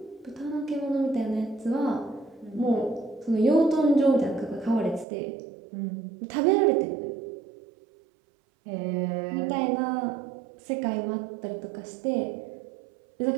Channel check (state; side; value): drops out; left; at 5.1 s